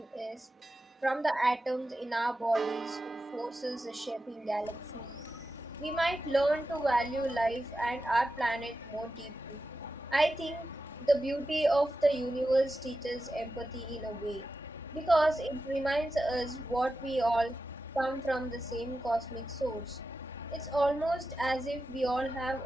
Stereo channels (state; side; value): normal; both; correlation 0.91